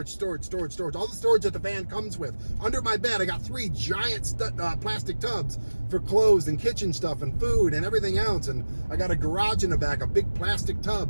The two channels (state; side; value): inverted; both; correlation -1.00